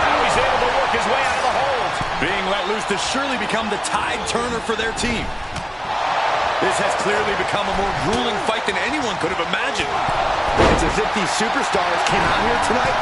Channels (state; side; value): identical; both; correlation 1.00